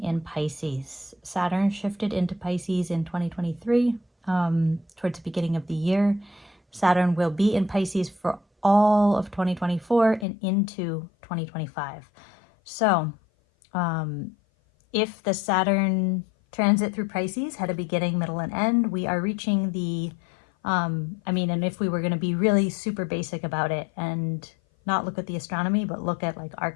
in Pisces. Saturn shifted into Pisces in 2023, towards the beginning of the year. Saturn will be in Pisces for all of 2024 and into 2025. So if the Saturn transit through Pisces had a beginning, middle, and end, we are reaching the, and if we were going to be really super basic about it and not look at the astronomy, but look at like our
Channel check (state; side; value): drops out; right; at 10.2 s